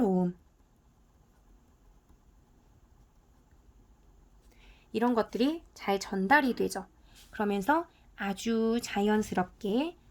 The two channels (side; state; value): both; identical; correlation 1.00